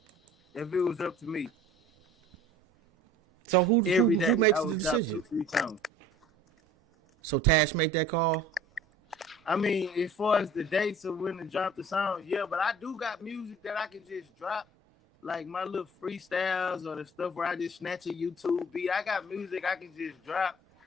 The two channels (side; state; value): both; normal; correlation 0.47